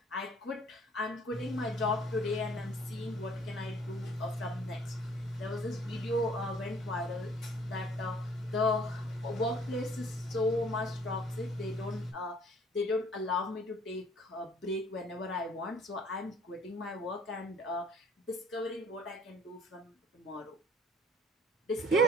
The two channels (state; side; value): normal; both; correlation 0.56